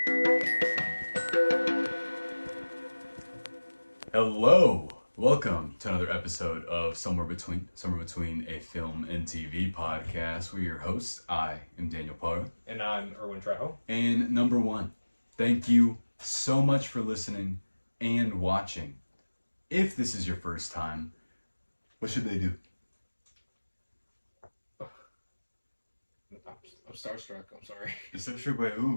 Hello, welcome to another episode of Somewhere Between a Film and TV podcast. We're your hosts. I am Daniel Parr. And I'm Erwin. And number one, thank you so much for listening and watching. If this is your first time, what should they do? I'm starstruck. I'm sorry. You're starstruck by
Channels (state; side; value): inverted; both; correlation -1.00